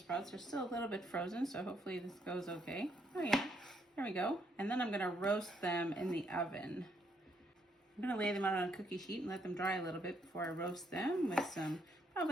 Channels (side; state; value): both; normal; correlation 0.73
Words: sprouts. They're still a little bit frozen, so hopefully this goes okay. Oh yeah, there we go. And then I'm gonna roast them in the oven. I'm gonna lay them out on a cookie sheet and let them dry a little bit before I roast them with some